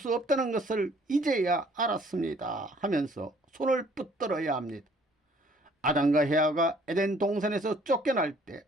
없다는 것을 이제야 알았습니다 하면서 손을 붙들어야 합니다. 아담과 헤아가 에덴 동산에서 쫓겨날 때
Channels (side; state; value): both; normal; correlation 0.59